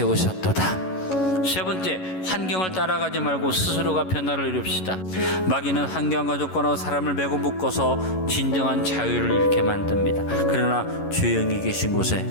세 번째, 환경을 따라가지 말고 스스로가 변화를 이룹시다. 마귀는 환경과 조건하고 사람을 매고 묶어서 진정한 자유를 잃게 만듭니다. 그러나 주의 영이 계신 곳에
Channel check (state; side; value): late; right; 11 ms